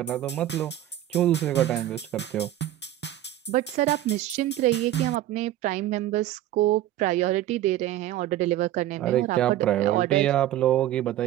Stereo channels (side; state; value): left; quieter; 13.3 dB